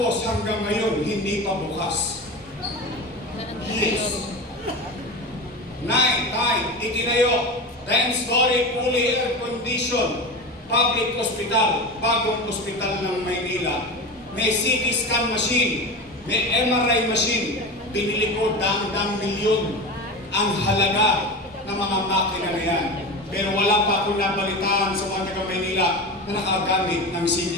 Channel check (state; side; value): normal; both; correlation 0.27